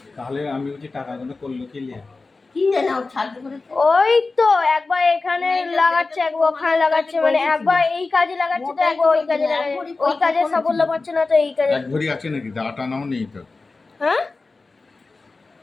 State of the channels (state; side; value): quieter; right; 3.7 dB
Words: তাহলে আমি বলছি টাকাগুলো করলো কি লিয়া? কি জানি ও ছাড়তে করেছে। ওই তো একবার এখানে লাগাচ্ছে, একবার ওখানে লাগাচ্ছে, মানে একবার এই কাজে লাগাচ্ছে তো একবার ওই কাজে লাগাচ্ছে। ওই কাজে সাফল্য পাচ্ছে না তো এই কাজে। এক ভরি আছে নাকি? দাটা নাও নেই তো। হ্যাঁ,